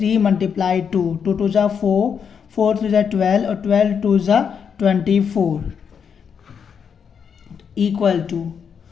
मल्टीप्लाई 2, 2 2 जा 4, 4 3 जा 12 और 12 2 जा 24 इक्वल टू,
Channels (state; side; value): quieter; right; 7.0 dB